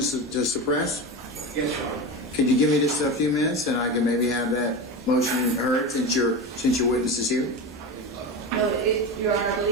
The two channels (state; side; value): normal; both; correlation 0.23